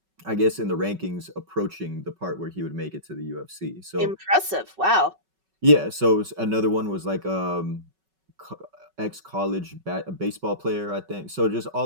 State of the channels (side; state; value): left; late; 5.3 ms